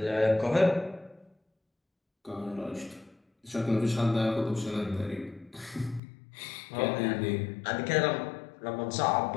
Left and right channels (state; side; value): drops out; right; at 6.0 s